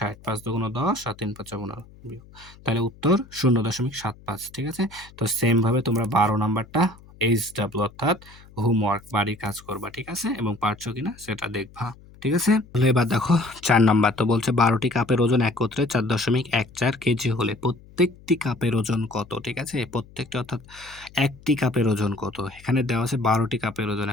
5 দুগুণ 10, আর 3 5 15, তাহলে উত্তর 0.75, ঠিক আছে। তো সেম ভাবে তোমরা 12 নাম্বারটা HW অর্থাৎ হোমওয়ার্ক বাড়ির কাজ করবা, ঠিক আছে, এবং পারছো কিনা সেটা দেখবা, ঠিক আছে। তাহলে এবার দেখো 4 নাম্বার, তো বলছে 12টি কাপের ওজন একত্রে 4.14 কেজি হলে প্রত্যেকটি কাপের ওজন কত, ঠিক আছে। প্রত্যেকটি অর্থাৎ একটি কাপের ওজন কত, এখানে দেওয়া আছে 12টি কাপের ওজন,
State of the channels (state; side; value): noise; left; hum, 23 dB below the sound